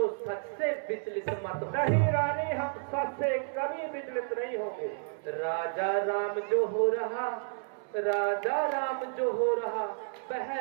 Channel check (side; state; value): left; silent; 57 dB below the other